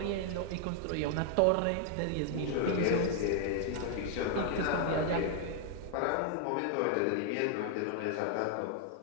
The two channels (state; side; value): different; both; correlation 0.00